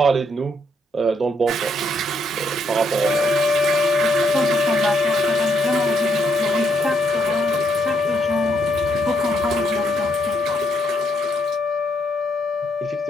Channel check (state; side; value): normal; both; correlation 0.75